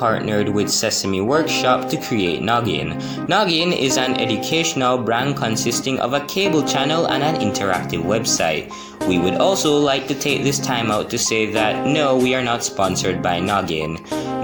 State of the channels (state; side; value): identical; both; correlation 1.00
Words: with Sesame Workshop to create Noggin. Noggin is an educational brand consisting of a cable channel and an interactive website. We would also like to take this time out to say that no, we are not sponsored by Noggin.